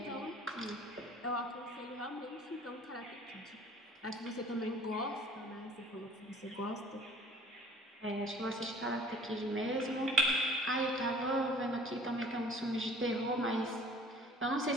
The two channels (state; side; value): normal; both; correlation 0.51